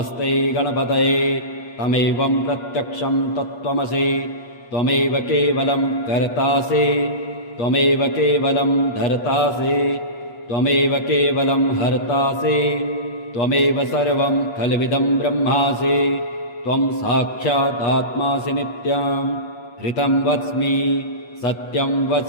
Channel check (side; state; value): right; late; 8.5 ms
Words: गणपतये तमेवं प्रत्यक्षं तत्त्वमसि त्वमेव केवलं कर्तासि त्वमेव केवलं धर्तासि त्वमेव केवलं हर्तासि त्वमेव सर्वं खल्विदं ब्रह्मासि त्वं साक्षादात्मासि नित्यं ऋतं वच्मि सत्यं